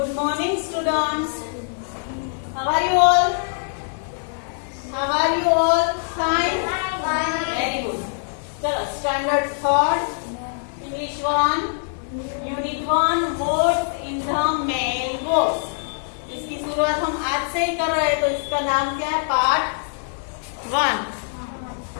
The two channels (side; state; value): right; silent; digital silence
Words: morning, students. How are you all? How are you all? Fine? Very good. चलो, standard third, English 1, Unit 1, words in the mailbox. इसकी शुरुआत हम आज से ही कर रहे हैं, तो इसका नाम क्या है? पार्ट 1.